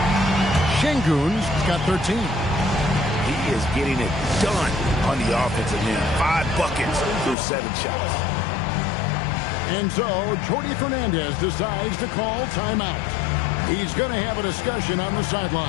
Şengün's got 13. He is getting it done on the offensive end. 5 buckets through 7 shots. And so, Jordi Fernandez decides to call timeout. He's going to have a discussion on the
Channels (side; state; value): right; drops out; at 7.4 s